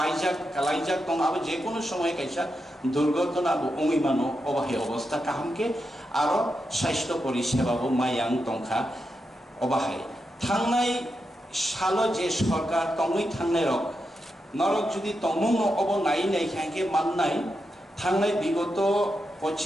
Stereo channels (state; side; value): normal; both; correlation 0.87